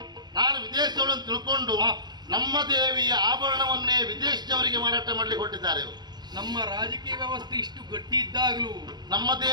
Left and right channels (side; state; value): left; late; 0.20 ms